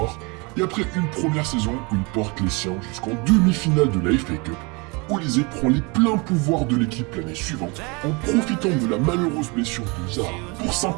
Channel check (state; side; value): quieter; left; 28.8 dB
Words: Et après une première saison où il porte les siens jusqu'en demi-finale de la FA Cup, Olise prend les pleins pouvoirs de l'équipe l'année suivante en profitant de la malheureuse blessure de Zaha pour